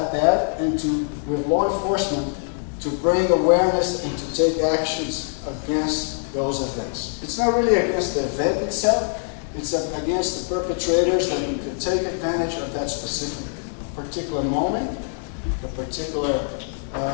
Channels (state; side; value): silent; right; digital silence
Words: that and to, with law enforcement, to bring awareness and to take actions against those events. It's not really against the event itself, it's against the perpetrators that take advantage of that specific particular moment, the particular